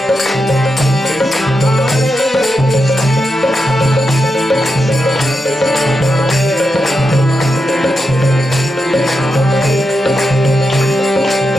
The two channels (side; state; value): both; normal; correlation 0.86